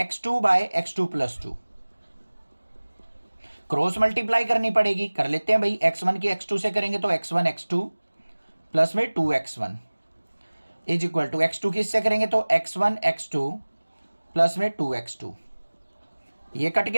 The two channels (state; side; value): inverted; both; correlation -1.00